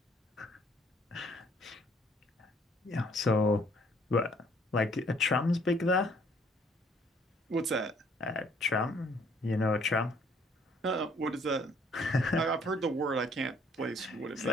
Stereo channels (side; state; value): both; normal; correlation 0.62